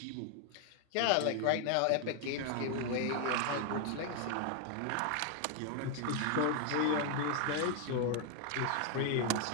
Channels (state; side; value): different; both; correlation 0.00